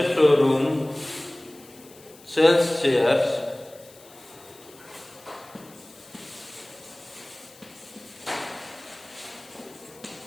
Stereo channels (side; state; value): left; noise; hiss, 23 dB below the sound